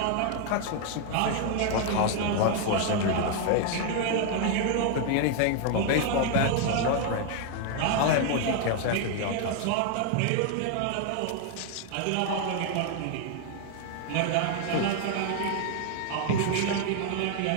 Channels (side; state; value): both; different; correlation 0.00